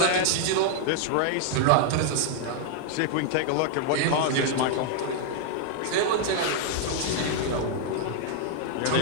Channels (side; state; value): both; different; correlation 0.00